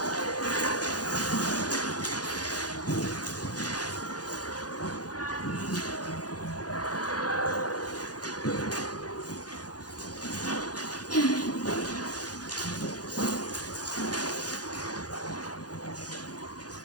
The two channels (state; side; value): late; right; 0.69 ms